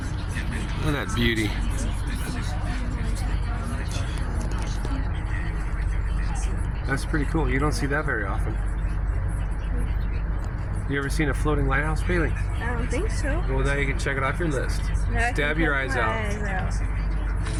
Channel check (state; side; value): identical; both; correlation 1.00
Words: at that beauty. That's pretty cool. You don't see that very often. You ever seen a floating lighthouse, Bailey? I don't think so. Well, now you can check it off your list. Stab your eyes out.